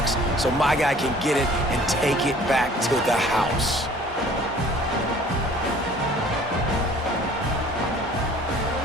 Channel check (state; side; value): normal; both; correlation 0.51